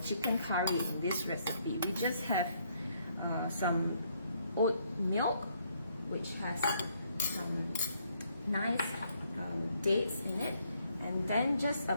chicken curry in this recipe. We just have some oat milk, which has some nice dates in it, and then just a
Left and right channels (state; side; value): inverted; both; correlation -0.70